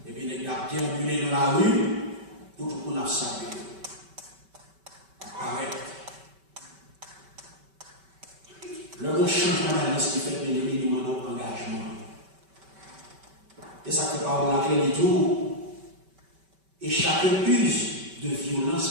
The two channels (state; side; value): late; left; 5.2 ms